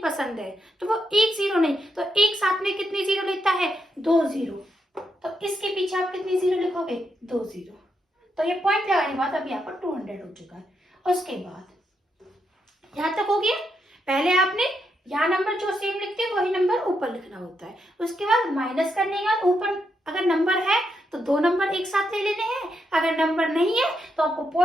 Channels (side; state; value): both; normal; correlation 0.81